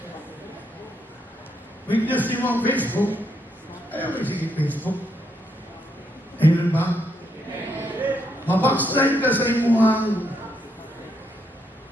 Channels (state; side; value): normal; both; correlation 0.77